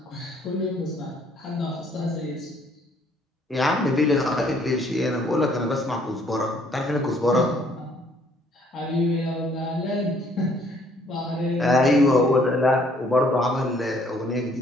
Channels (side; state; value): both; normal; correlation 0.63